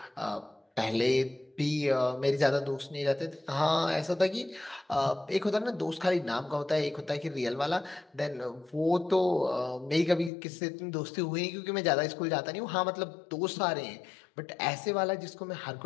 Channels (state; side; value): drops out; right; at 10.3 s